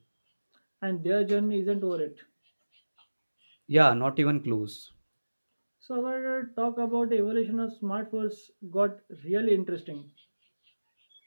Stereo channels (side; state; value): both; inverted; correlation -1.00